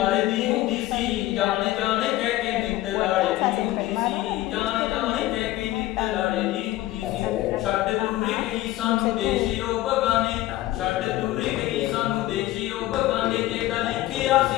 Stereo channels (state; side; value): quieter; right; 16.2 dB